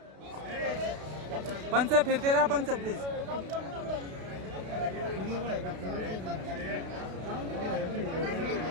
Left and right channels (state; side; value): late; left; 32 ms